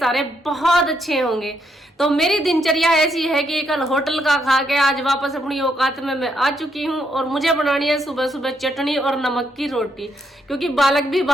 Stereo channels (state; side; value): normal; both; correlation 0.76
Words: बहुत अच्छे होंगे। तो मेरी दिनचर्या ऐसी है कि कल होटल का खा के आज वापस अपनी औकात में मैं आ चुकी हूँ, और मुझे बनानी है सुबह सुबह चटनी और नमक की रोटी, क्योंकि बालक भी